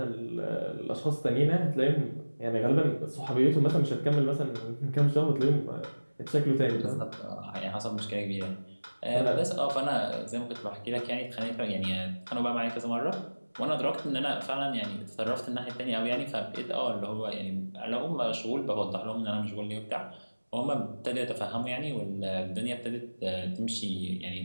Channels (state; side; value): inverted; both; correlation -1.00